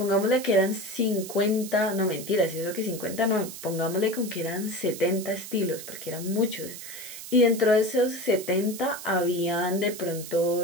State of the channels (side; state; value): right; noise; hiss, 11 dB below the sound